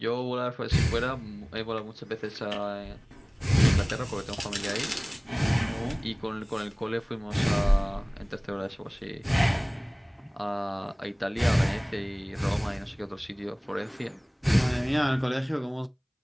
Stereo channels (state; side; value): identical; both; correlation 1.00